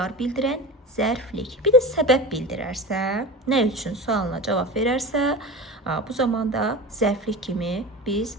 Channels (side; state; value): both; normal; correlation 0.30